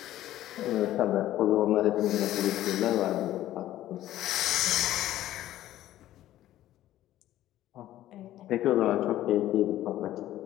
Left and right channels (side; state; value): right; quieter; 13.8 dB